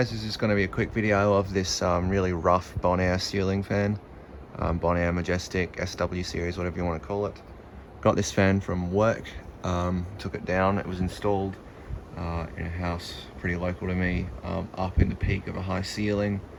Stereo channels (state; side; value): identical; both; correlation 1.00